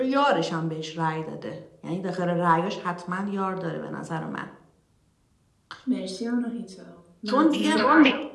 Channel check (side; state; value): both; identical; correlation 1.00